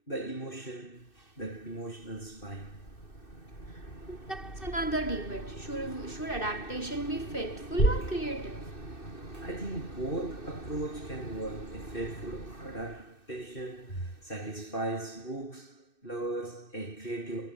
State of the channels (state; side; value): late; right; 2.6 ms